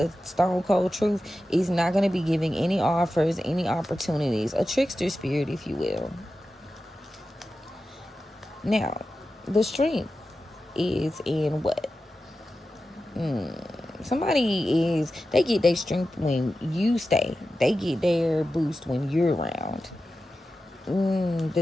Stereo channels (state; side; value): normal; both; correlation 0.92